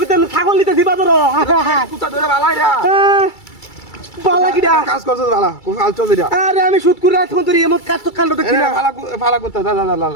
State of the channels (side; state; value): right; late; 2.3 ms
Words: ছাগল নিতেছি বাজারে কুত্তা ধরে পালাই রে, পালা কি কাজ করছ পালা কাজ চলছে রে। আরে আমি সুদ করে আছি তোর এমন কাজ তো কাণ্ড দেখছি না, পালা কুত্তা যা যা